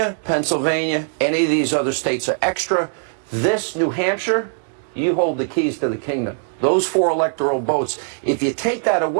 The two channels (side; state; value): left; silent; digital silence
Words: Pennsylvania, any of these other states are extra. This, New Hampshire, you hold the keys to the kingdom. Those 4 electoral votes, if you take that